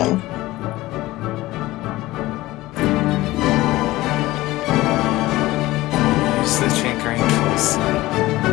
Use the tinkering tools.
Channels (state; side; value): quieter; right; 18.0 dB